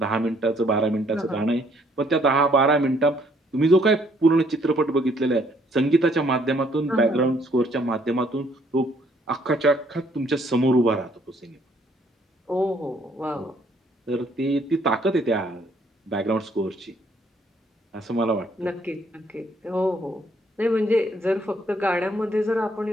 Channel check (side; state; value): both; normal; correlation 0.65